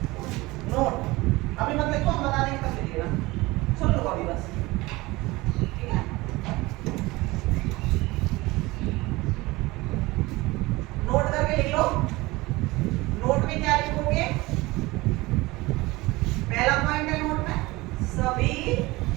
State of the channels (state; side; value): quieter; left; 21.2 dB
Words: नोट। अभी मत लिखो, हम बता देंगे तब लिखिएगा। सुन लो अभी बस, ठीक है। नोट करके लिख लो। नोट में क्या लिखोगे, पहला पॉइंट है नोट में, सभी